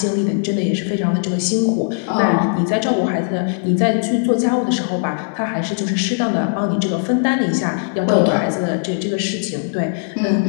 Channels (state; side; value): silent; right; digital silence